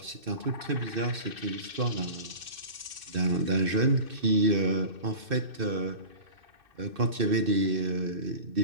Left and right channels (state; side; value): late; left; 2.6 ms